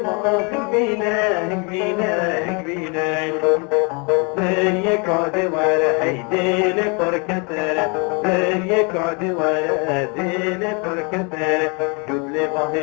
هنبينا هنبينا هنبينا زيك عد ورا هيديل فركتر زيك عد ورا هيديل فركتر جود لي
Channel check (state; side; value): quieter; right; 33.2 dB